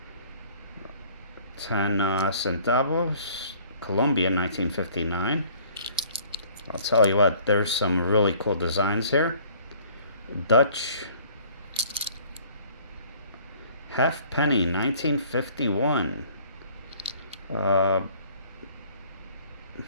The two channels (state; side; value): inverted; both; correlation -0.54